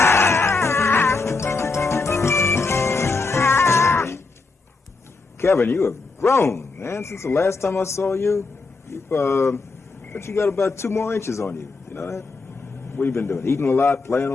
Kevin, you have grown, man, since the last time I saw you. But you got about 2 more inches on you. You know that? What you been doing? Eating a lot, playing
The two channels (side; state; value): right; quieter; 4.0 dB